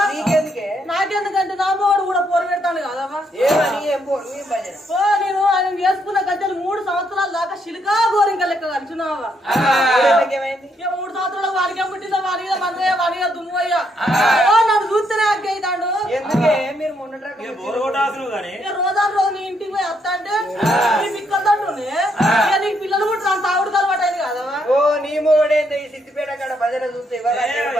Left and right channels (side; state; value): both; normal; correlation 0.74